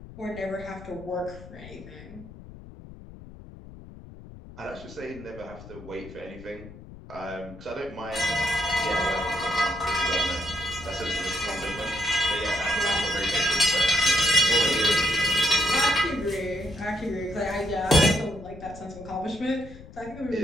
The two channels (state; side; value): noise; left; rumble, 16 dB below the sound